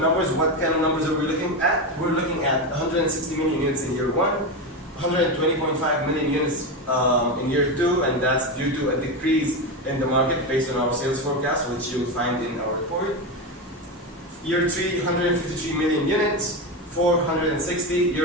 what kind of numbers are we looking at? We're looking at 160 million units in year one, 120.5 million units in year two, and that's due to a decrease in the market based on our sales forecast, which you'll find in our report. Year 3, 153 million units, 460,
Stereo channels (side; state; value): both; normal; correlation 0.15